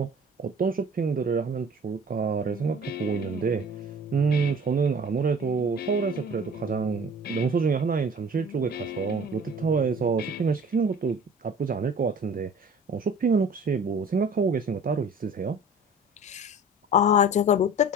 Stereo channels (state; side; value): normal; both; correlation 0.45